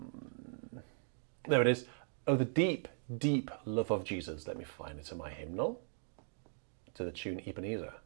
it is. Oh, the deep, deep love of Jesus. Let me find it in my hymnal. To the tune Ebenezer.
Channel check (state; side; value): silent; left; digital silence